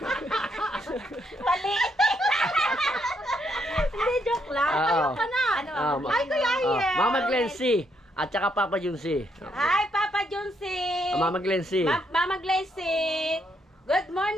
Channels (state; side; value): normal; both; correlation 0.75